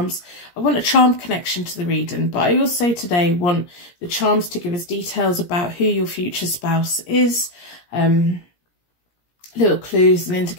I want a charm connection to the reading, but I also today want the charms to give us details about who your future spouse is, little clues and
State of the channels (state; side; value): late; right; 17 ms